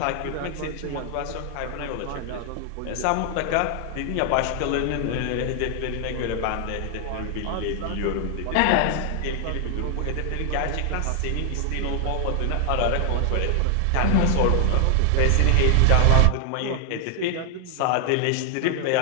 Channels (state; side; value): different; both; correlation 0.00